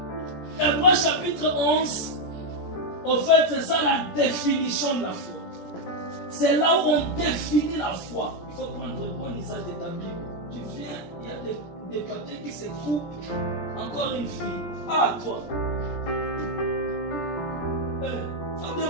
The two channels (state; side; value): late; right; 17 ms